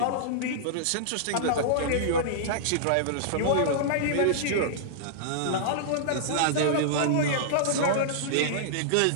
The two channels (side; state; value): both; different; correlation -0.02